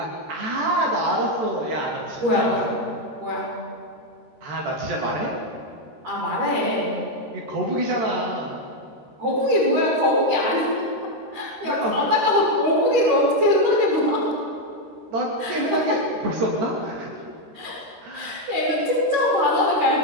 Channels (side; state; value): left; late; 13 ms